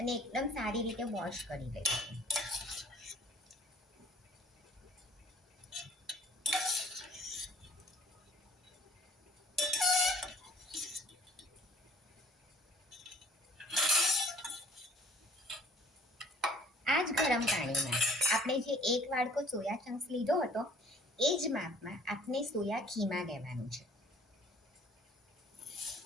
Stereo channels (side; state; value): both; normal; correlation 0.55